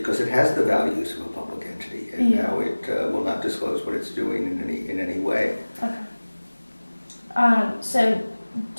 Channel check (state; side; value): inverted; both; correlation -1.00